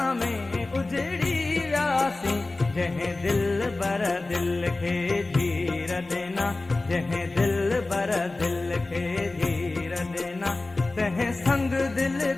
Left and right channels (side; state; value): right; quieter; 3.2 dB